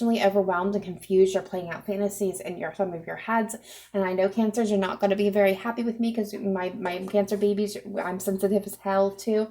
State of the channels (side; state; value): both; identical; correlation 1.00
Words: overwhelmed and confused. You're playing out fantasies in some of your heads. And I know Cancers, you're not going to be very happy with me because my Cancer babies, I'm sensitive as hell too.